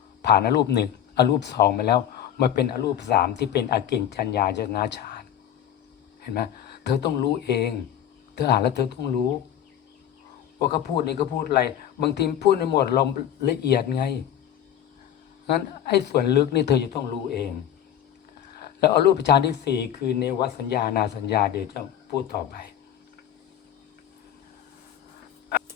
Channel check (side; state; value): right; quieter; 10.3 dB